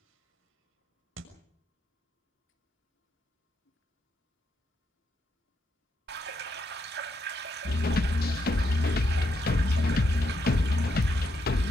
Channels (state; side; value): normal; both; correlation 0.79